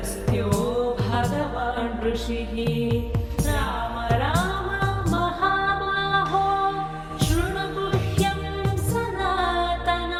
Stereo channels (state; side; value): identical; both; correlation 1.00